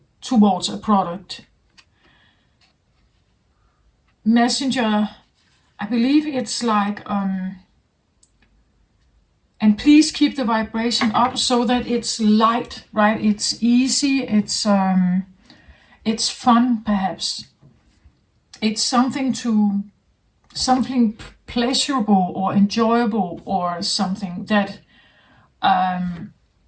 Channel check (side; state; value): both; identical; correlation 1.00